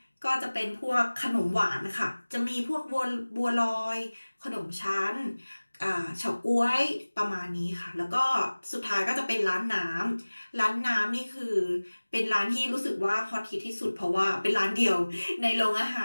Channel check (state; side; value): inverted; both; correlation -1.00